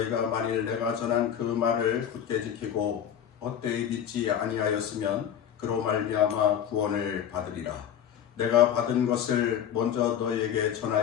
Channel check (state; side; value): quieter; right; 9.2 dB